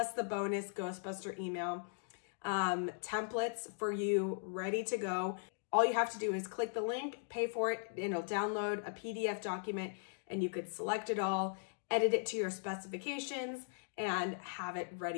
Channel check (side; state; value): right; silent; digital silence